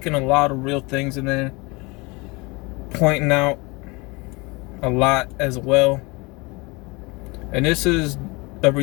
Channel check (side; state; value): right; quieter; 26.3 dB